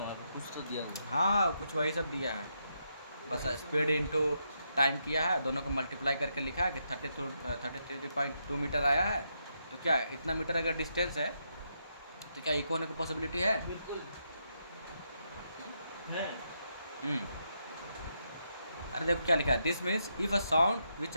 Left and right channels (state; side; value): inverted; both; correlation -0.80